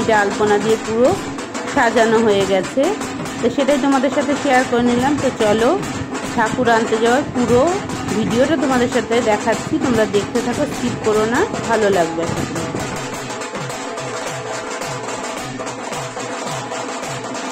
আলপনা দিয়ে পুরো সাজানো হয়ে গেছে, তো সেটাই তোমাদের সাথে শেয়ার করে নিলাম। তো চলো ঠাকুর আনতে যাওয়ার পুরো ভিডিওটা তোমাদের সাথে দেখাচ্ছি, তোমরা দেখতে থাকো, স্কিপ করো না, ভালো লাগবে।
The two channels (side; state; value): both; identical; correlation 1.00